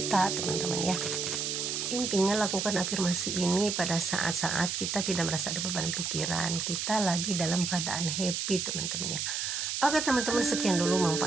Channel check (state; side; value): noise; right; hiss, 1 dB below the sound